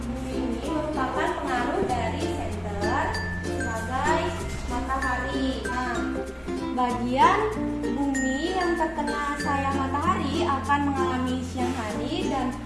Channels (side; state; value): both; identical; correlation 1.00